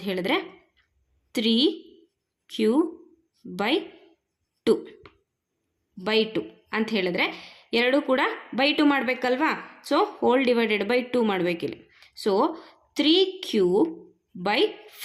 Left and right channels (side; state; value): both; identical; correlation 1.00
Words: ಹೇಳಿದ್ರೆ 3Q/2 ಅಂತ ಹೇಳಿದ್ರೆ 2 ಕೂಡ /2 ಮಾಡಬೇಕಲ್ವಾ. ಸೊ ಹೋಲ್ ಡಿವೈಡೆಡ್ ಬೈ 2 ಮಾಡಬೇಕಿಲ್ಲಿ. ಸೊ